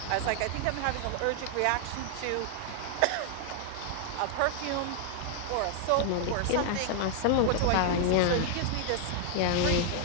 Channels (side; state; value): both; different; correlation 0.00